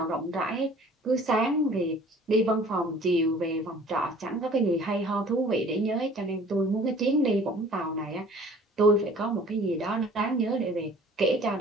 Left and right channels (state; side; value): normal; both; correlation 0.50